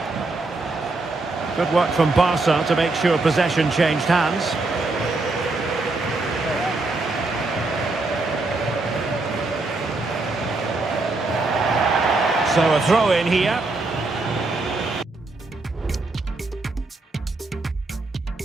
Good work from Barca to make sure possession changed hands. So a throw in here.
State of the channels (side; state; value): left; quieter; 3.3 dB